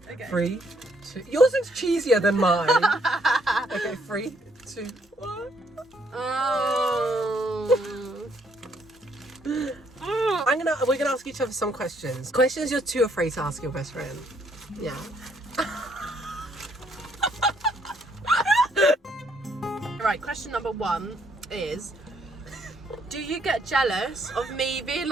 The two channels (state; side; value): normal; both; correlation 0.69